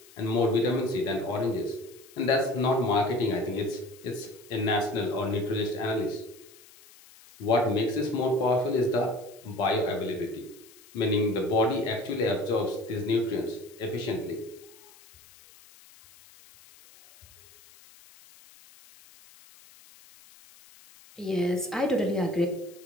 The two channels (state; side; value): noise; left; hiss, 24 dB below the sound